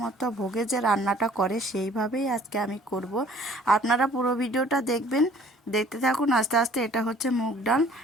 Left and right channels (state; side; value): normal; both; correlation 0.54